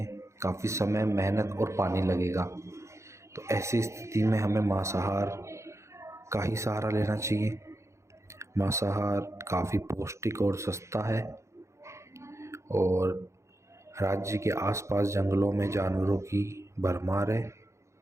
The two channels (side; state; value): left; late; 0.14 ms